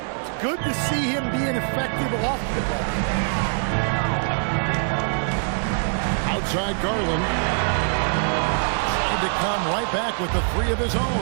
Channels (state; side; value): silent; left; digital silence